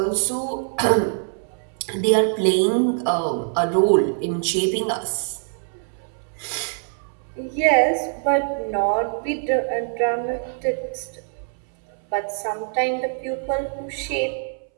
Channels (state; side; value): silent; left; 63 dB below the other